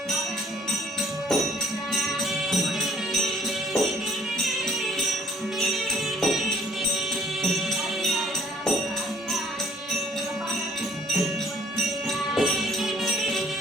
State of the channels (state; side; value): normal; both; correlation 0.58